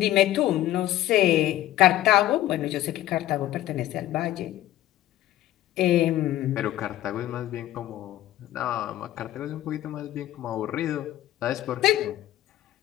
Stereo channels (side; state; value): right; quieter; 14.2 dB